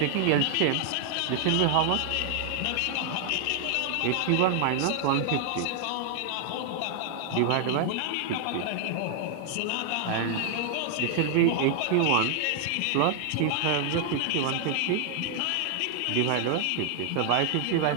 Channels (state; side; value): different; both; correlation 0.00